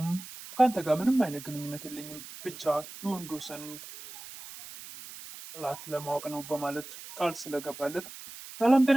ከአንተ ጋር ምንም አይነት ግንኙነት የለኝም፣ ብቻ የወንዶሰንን ጥላት ለማወቅ ነው በማለት ቃል ስለገባለት ሰላም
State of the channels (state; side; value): noise; right; hiss, 14 dB below the sound